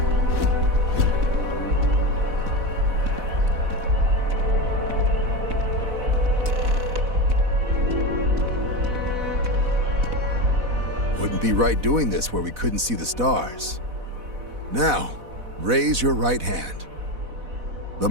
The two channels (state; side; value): late; left; 4.1 ms